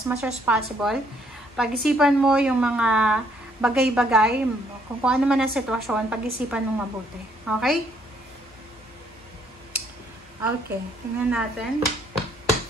much as possible, pag-isipan mo yung mga bagay-bagay, kung ano man ang sitwasyon, pag-isipan mong mabuti. Okay? Okay, tingnan natin.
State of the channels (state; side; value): normal; both; correlation 0.68